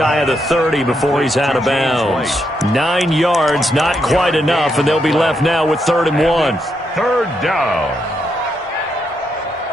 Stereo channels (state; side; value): normal; both; correlation 0.80